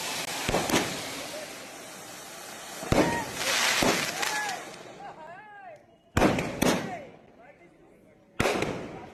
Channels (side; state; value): both; identical; correlation 1.00